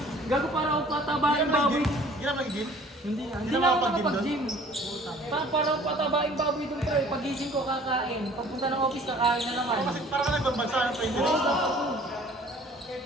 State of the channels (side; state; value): both; normal; correlation 0.51